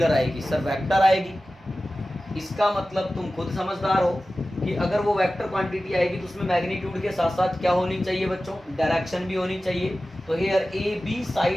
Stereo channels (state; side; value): normal; both; correlation 0.95